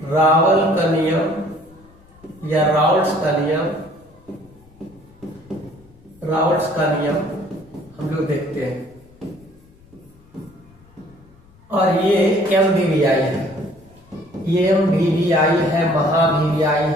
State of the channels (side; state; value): left; noise; rumble, 28 dB below the sound